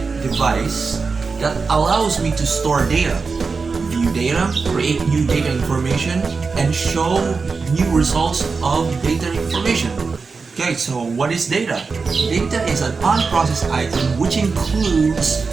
device that allows me to store data, view data, create new data information, and show new results of data information. Okay, so what is data? Data is an unprocessed item which includes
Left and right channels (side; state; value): left; quieter; 4.7 dB